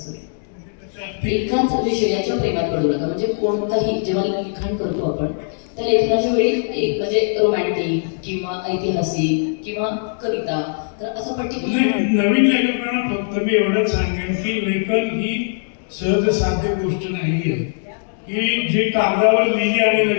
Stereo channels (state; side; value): silent; right; 64 dB below the other